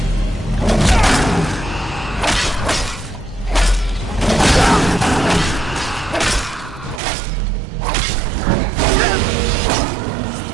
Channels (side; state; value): left; drops out; at 7.0 s